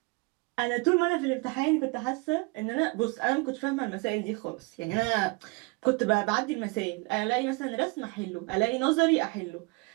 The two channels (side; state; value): left; quieter; 26.7 dB